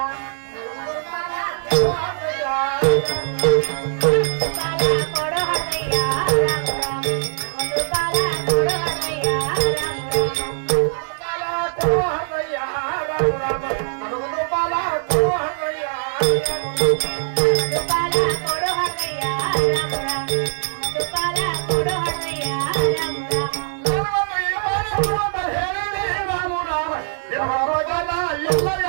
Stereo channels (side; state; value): left; silent; digital silence